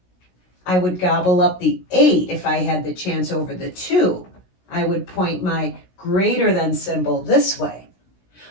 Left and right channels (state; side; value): late; right; 16 ms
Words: I would gobble up the 8 if I had the chance over the 2. I would point my greater than symbol this way.